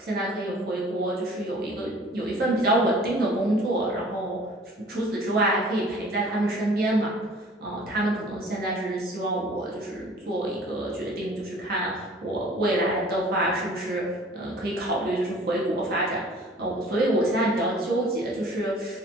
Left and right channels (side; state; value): both; normal; correlation 0.50